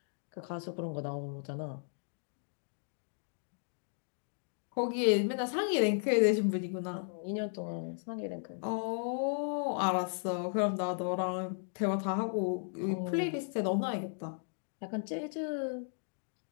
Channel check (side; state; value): right; silent; digital silence